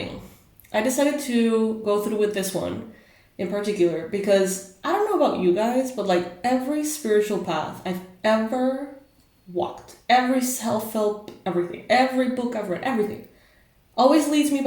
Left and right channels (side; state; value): both; identical; correlation 1.00